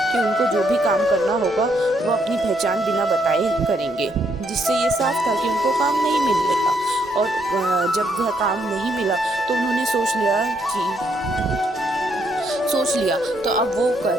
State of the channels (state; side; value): normal; both; correlation 0.74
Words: कि उनको जो भी काम करना होगा वो अपनी पहचान बिना बताए करेंगे, जिससे ये साफ था कि उनको काम नहीं मिलेगा। और जब वह काम नहीं मिला तो उन्होंने सोच लिया तो अब वो